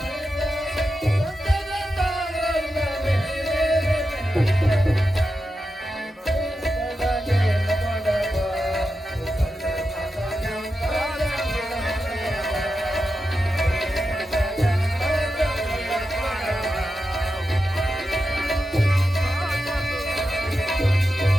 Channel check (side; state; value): both; normal; correlation 0.89